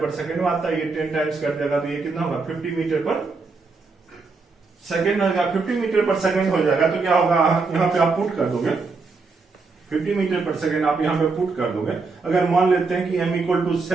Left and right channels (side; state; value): left; quieter; 4.2 dB